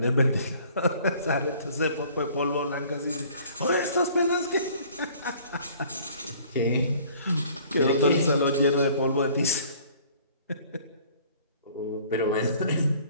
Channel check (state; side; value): inverted; both; correlation -0.53